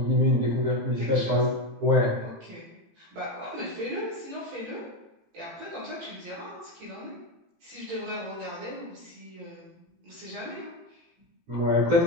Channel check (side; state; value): left; late; 18 ms